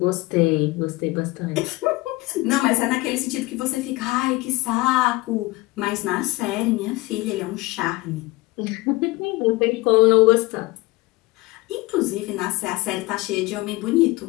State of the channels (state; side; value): quieter; right; 21.1 dB